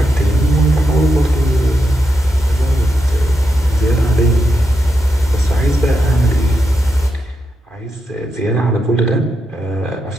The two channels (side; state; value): both; normal; correlation 0.85